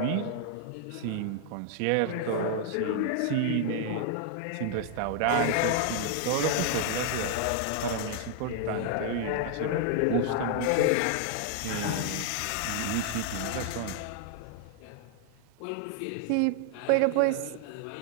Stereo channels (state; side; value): different; both; correlation -0.01